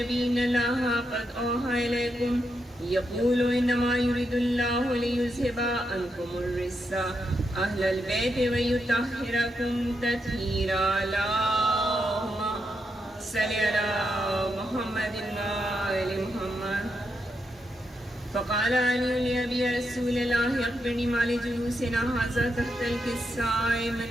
إن الله قد أوحى إليكم يقول إنما يريد الله ليذهب عنكم الرجس أهل البيت ويطهركم تطهيرا. اللهم صل على محمد وآل محمد. فقال علي لأبي رسول الله أخبرني ما لجلوسنا هذا تحت الكساء من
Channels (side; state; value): both; normal; correlation 0.83